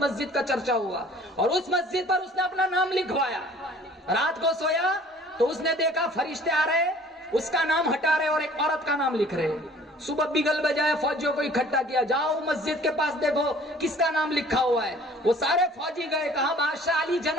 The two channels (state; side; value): normal; both; correlation 0.51